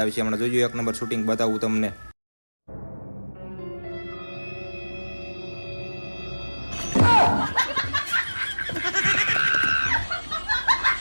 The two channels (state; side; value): inverted; both; correlation -1.00